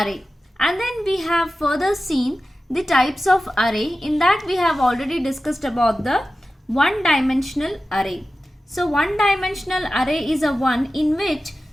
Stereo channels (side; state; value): both; normal; correlation 0.94